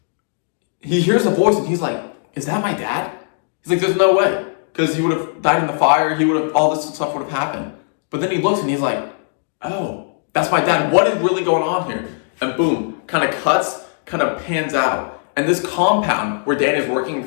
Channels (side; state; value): right; silent; digital silence